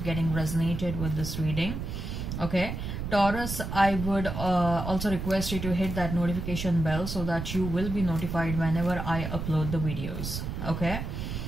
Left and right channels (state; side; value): noise; right; rumble, 5 dB below the sound